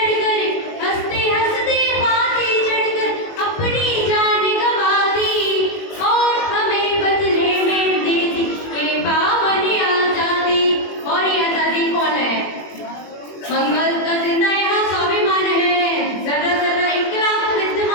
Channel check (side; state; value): right; late; 21 ms